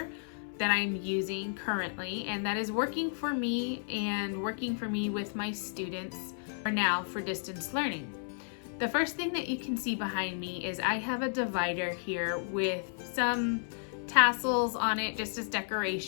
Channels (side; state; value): right; silent; 56 dB below the other